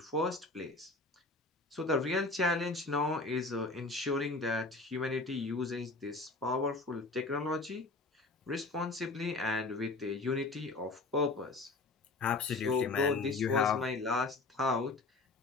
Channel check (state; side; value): quieter; right; 3.4 dB